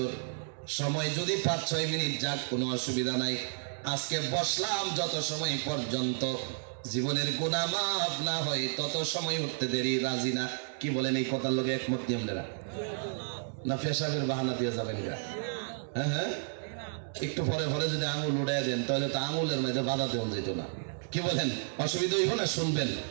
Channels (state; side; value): silent; left; digital silence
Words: সময় যদি 5-6 মিনিট যাক কোনো অসুবিধা নাই, আজকে বসলাম যত সময় পর্যন্ত জীবনের গুনাহ মাফ না হয় তত সময় উঠতে দেরি রাজি না। কি বলেন এই কথার লগে একমত কি আপনারা? না পেশাবের বাহানা দিয়ে যাবেন গা? হ্যাঁ হ্যাঁ, একটু পরে পরে যদি আঙুল উড়াই দেন তাহলে তো আঙুলের মধ্যে বাধা দেওয়া যেত না। কি বলেন, অসুবিধা হইব না? শুনবেন